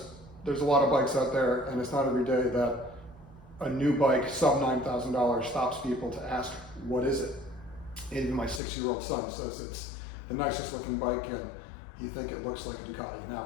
there's a lot of bikes out there and it's not every day that a new bike sub $9,000 stops people to ask, what is it? Even my 6-year-old son says it's the nicest looking bike and he thinks it looks like a Ducati.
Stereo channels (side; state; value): right; drops out; at 8.6 s